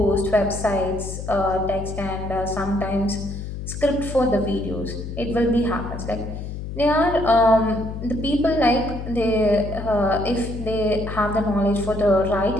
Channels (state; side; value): noise; left; hum, 7 dB below the sound